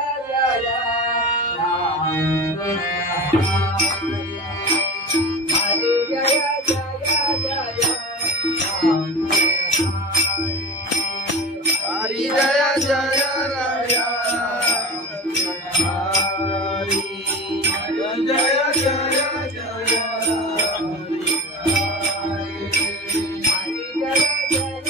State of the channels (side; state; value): both; normal; correlation 0.31